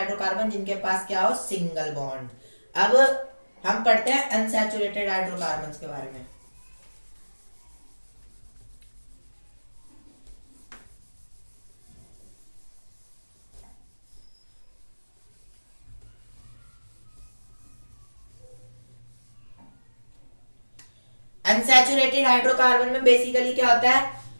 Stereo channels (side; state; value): both; inverted; correlation -1.00